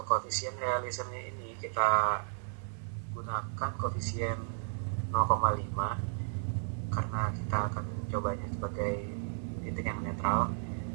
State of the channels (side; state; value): left; silent; digital silence